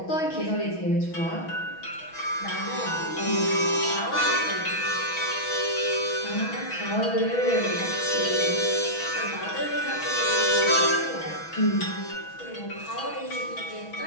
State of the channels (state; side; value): late; right; 6.2 ms